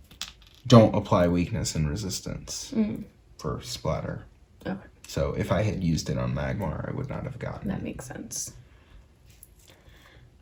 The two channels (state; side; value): identical; both; correlation 1.00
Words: Don't apply weakness and resistance for Splatter. Okay. So if I had used it on Magmar, I would not have gotten it. That makes sense.